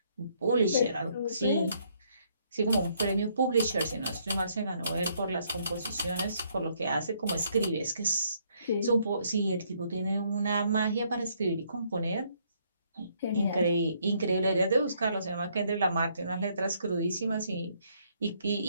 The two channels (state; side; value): inverted; both; correlation -0.69